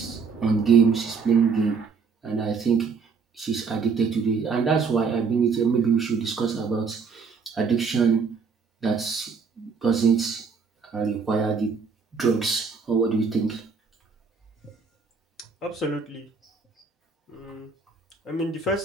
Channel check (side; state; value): left; quieter; 5.3 dB